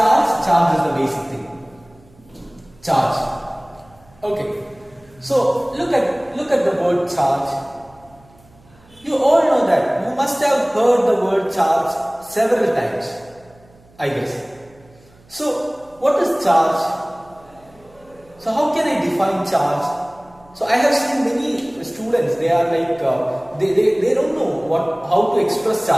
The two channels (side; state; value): right; noise; hum, 28 dB below the sound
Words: Charge is the basic thing. Charge. Okay. So look at the word charge. You all know that. You must have heard the word charge several times, I guess. So what is charge? So how can I define charge? So I have seen many students, they are like, they don't know how to express